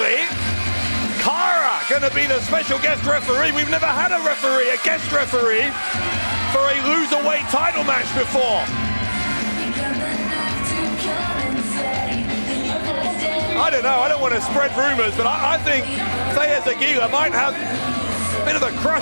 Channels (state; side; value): inverted; both; correlation -1.00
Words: Kara gonna be the special guest referee. We've never had a referee, a guest referee, for a Loserweight title match before. I don't know, I don't want to spread rumors, but I think Feyyaz Aguilla might have a bit of a